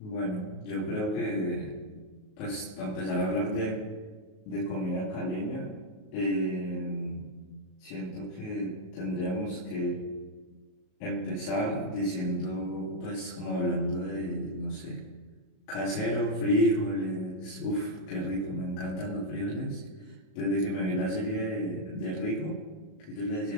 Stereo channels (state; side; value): late; right; 38 ms